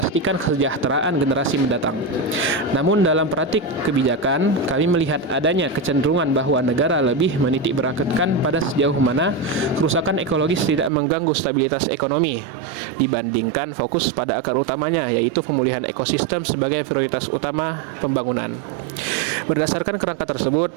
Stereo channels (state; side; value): drops out; left; at 10.9 s